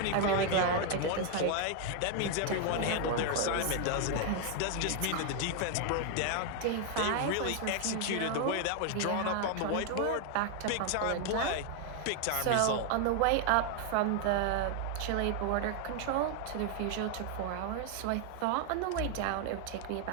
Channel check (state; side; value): different; both; correlation 0.00